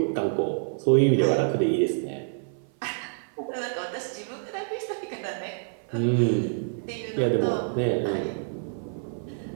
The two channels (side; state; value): left; silent; 57 dB below the other